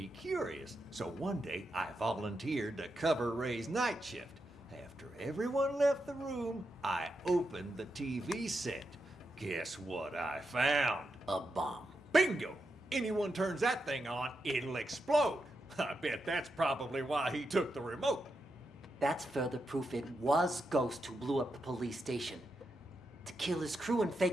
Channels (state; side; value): normal; both; correlation 0.86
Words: curious, so one day I volunteered to cover Ray's night shift. After everyone left the room, I opened the TV set. Guess what I found? A bomb. Bingo! Anyone turns that thing on, it'll explode. I bet that's probably why he took the remote. That's further proof it was Ghost who blew up the police station. To kill his crew and